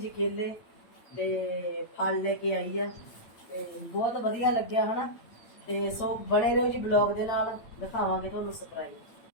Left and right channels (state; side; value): late; right; 8.8 ms